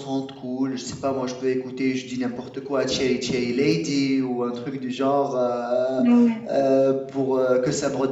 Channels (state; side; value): identical; both; correlation 1.00